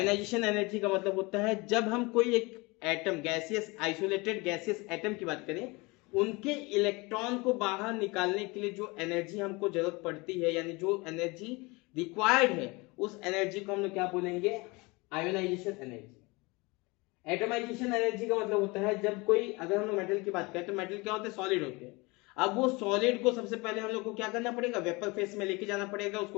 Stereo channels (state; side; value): quieter; right; 25.3 dB